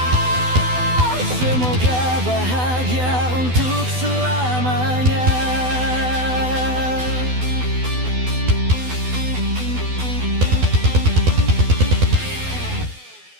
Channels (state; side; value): late; left; 12 ms